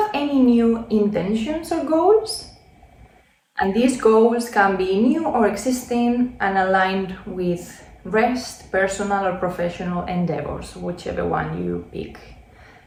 any new intentions or goals? And these goals can be new or existing and aligned with rest, personal or professional endeavors, whichever one you pick.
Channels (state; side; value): identical; both; correlation 1.00